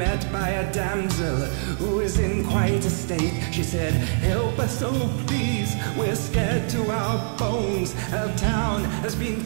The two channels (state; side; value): silent; left; digital silence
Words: by a damsel who was in quite a state. She said, "Help us, oh please, we're scared to our bones. Our town has been